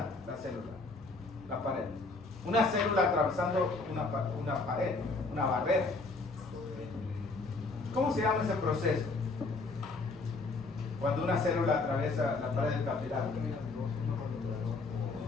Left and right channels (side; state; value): right; quieter; 3.6 dB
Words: la célula? La pared. Una célula atravesando una pared, una barrera. ¿Cómo se llama ese proceso? Cuando una célula atraviesa la pared del capilar.